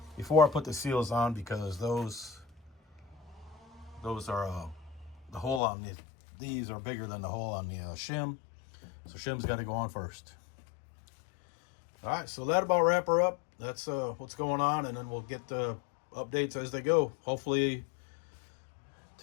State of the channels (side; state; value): right; drops out; at 5.6 s